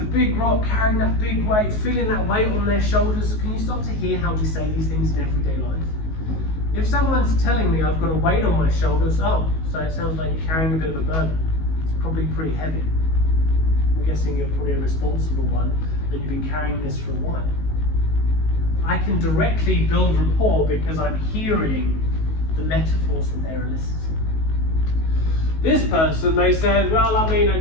big rock, carrying that big weight, feeling that weight on their shoulders, can you start to hear how we say these things in everyday life? If someone's telling me I've got a weight on my shoulders, oh, so it sounds like you're carrying a bit of a burden. It's probably pretty heavy. I'm guessing you're probably a responsible one and you've been carrying this for a while. I can directly build rapport because I'm hearing the metaphors that they're eliciting. This person, they said, well, I mean, I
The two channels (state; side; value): late; right; 19 ms